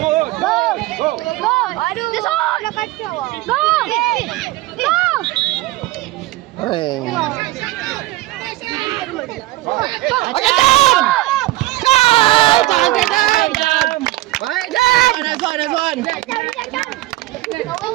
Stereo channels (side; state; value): left; quieter; 18.2 dB